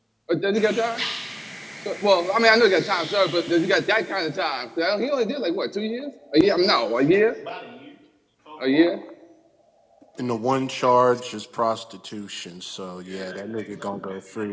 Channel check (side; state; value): both; identical; correlation 1.00